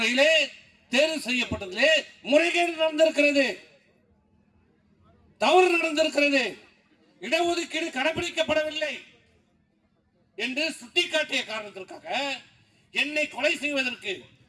தேர்வு செய்யப்பட்டதிலே முறைகேடு நடந்திருக்கிறது, தவறு நடந்திருக்கிறது, இடஒதுக்கீடு கடைபிடிக்கப்படவில்லை என்று சுட்டிக்காட்டிய காரணத்திற்காக என்னை கொலை செய்வதற்கு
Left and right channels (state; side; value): identical; both; correlation 1.00